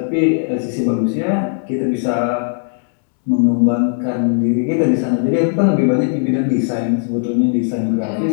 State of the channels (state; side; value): silent; right; 68 dB below the other